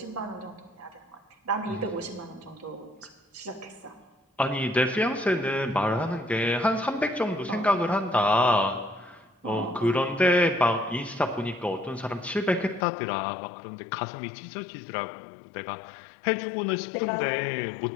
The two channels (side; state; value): right; drops out; at 12.9 s